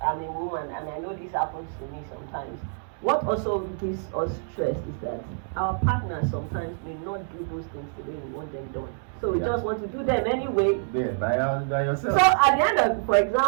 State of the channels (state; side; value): silent; left; 60 dB below the other